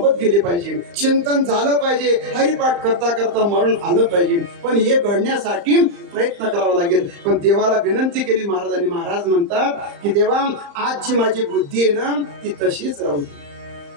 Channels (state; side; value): late; left; 35 ms